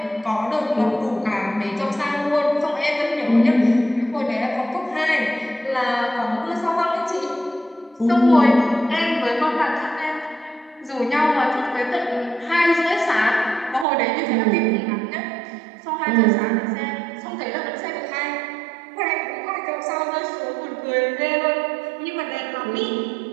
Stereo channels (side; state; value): left; drops out; at 13.9 s